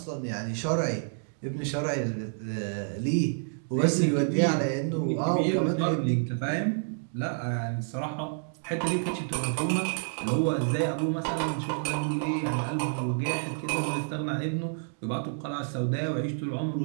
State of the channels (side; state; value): left; silent; digital silence